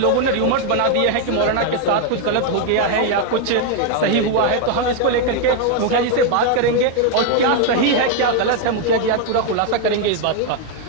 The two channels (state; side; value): different; both; correlation 0.01